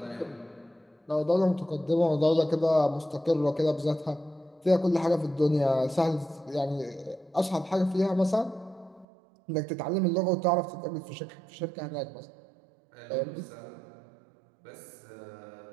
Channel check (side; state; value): left; drops out; at 9.1 s